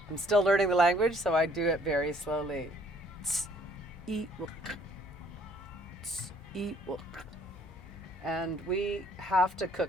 I'm still learning the language, so I do it very slowly. And we have to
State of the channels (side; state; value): both; normal; correlation 0.61